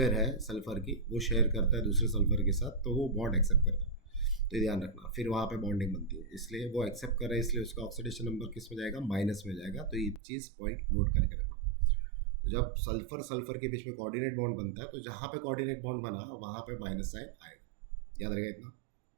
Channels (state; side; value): drops out; left; at 10.2 s